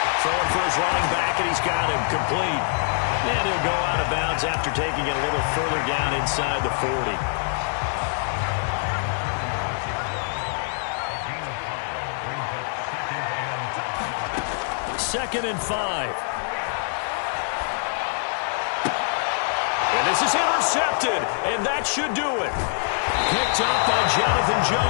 Throwing for his running back, and he's got him complete. And he'll go out of bounds after taking it a little further down inside the 40. Second and 5. And this is intercepted, and that should do it. Picked up by Jonathan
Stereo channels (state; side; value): silent; right; 62 dB below the other